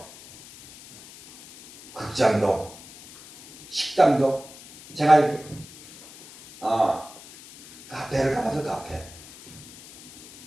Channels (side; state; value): left; noise; hiss, 19 dB below the sound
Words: 극장도 식당도 제가 이렇게 카페를 가봐서 카페.